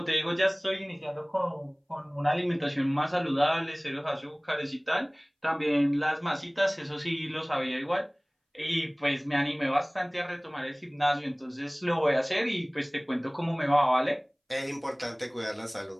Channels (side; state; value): both; identical; correlation 1.00